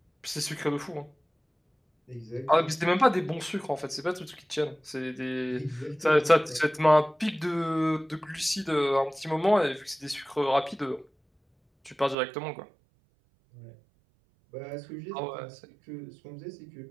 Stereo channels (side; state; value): left; drops out; at 12.2 s